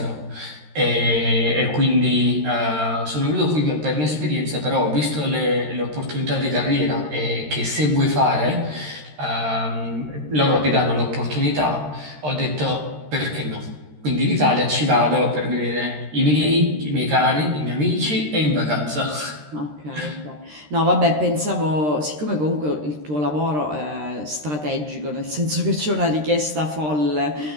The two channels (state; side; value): late; left; 13 ms